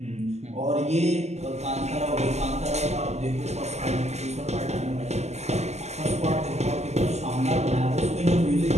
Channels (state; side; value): late; left; 0.33 ms